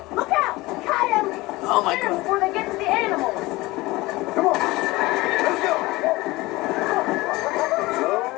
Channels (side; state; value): right; quieter; 20.6 dB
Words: Look out! Coyotes! Oh my Get 'em God. before they get to the animals. Come on. Let's go. Slow up.